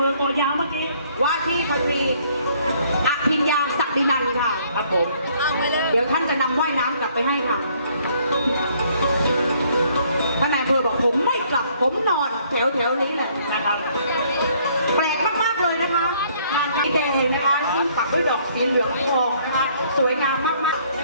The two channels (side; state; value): both; inverted; correlation -0.64